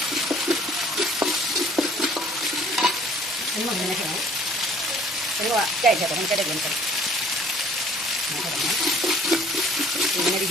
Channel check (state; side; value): normal; both; correlation 0.57